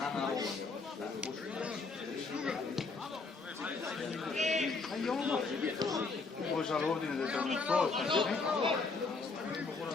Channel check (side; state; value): right; quieter; 4.1 dB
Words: Poi sa l'ordine del trasporto.